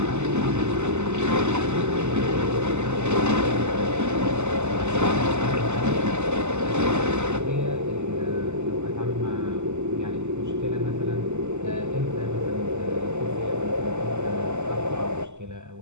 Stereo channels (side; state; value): left; late; 0.83 ms